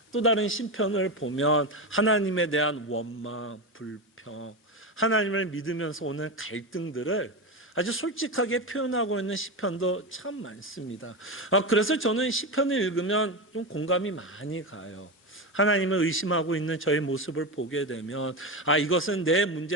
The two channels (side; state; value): both; normal; correlation 0.17